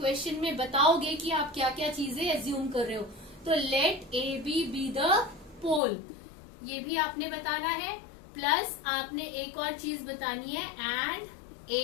में बताओगे कि आप क्या क्या चीजें एज्यूम कर रहे हो. तो लेट ए बी द पोल, ये भी आपने बताना है, प्लस आपने एक और चीज बतानी है and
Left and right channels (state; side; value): drops out; right; at 5.8 s